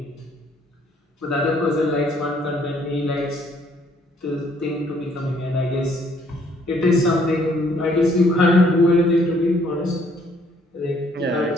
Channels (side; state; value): both; normal; correlation 0.65